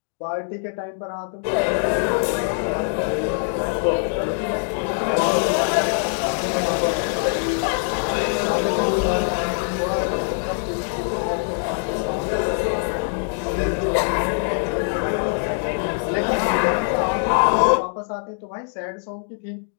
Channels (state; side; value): silent; right; digital silence